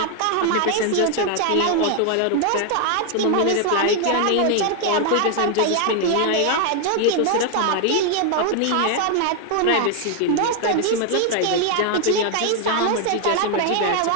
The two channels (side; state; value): both; different; correlation 0.01